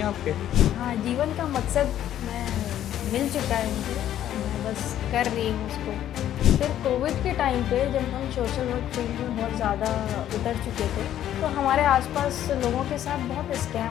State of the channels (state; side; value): quieter; right; 11.5 dB